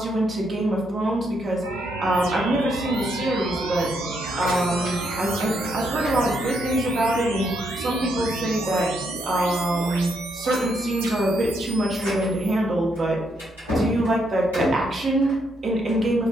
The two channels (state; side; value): normal; both; correlation 0.76